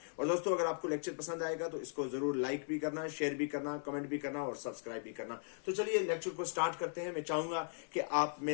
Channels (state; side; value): silent; right; 52 dB below the other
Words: और दोस्तों, अगर आपको लेक्चर पसंद आएगा तो इसको जरूर लाइक भी करना, शेयर भी करना, कमेंट भी करना और सब्सक्राइब भी करना। तो चलिए लेक्चर को स्टार्ट करते हैं। मैं चाहूंगा कि आप